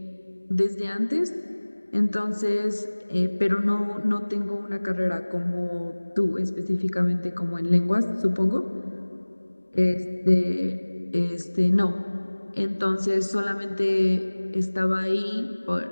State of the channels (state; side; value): inverted; both; correlation -1.00